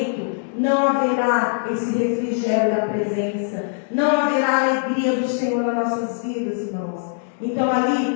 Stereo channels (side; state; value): right; silent; 64 dB below the other